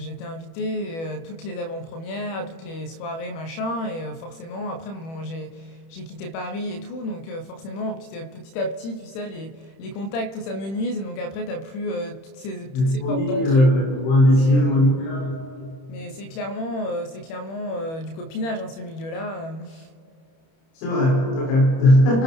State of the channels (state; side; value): late; right; 31 ms